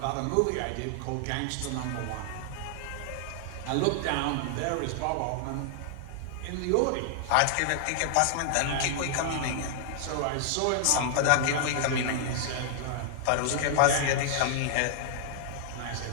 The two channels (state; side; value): different; both; correlation -0.01